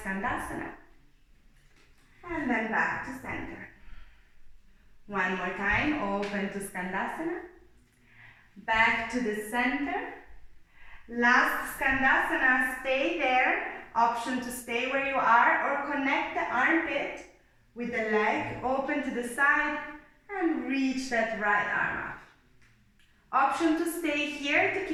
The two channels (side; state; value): both; identical; correlation 1.00